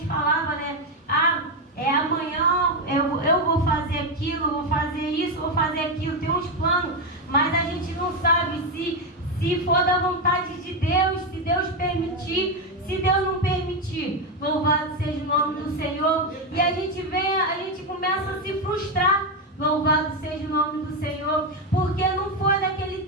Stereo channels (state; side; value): normal; both; correlation 0.08